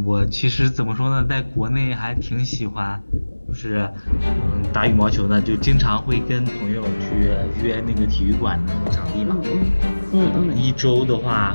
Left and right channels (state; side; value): inverted; both; correlation -1.00